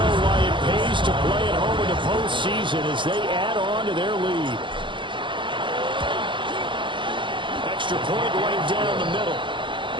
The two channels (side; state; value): left; late; 0.24 ms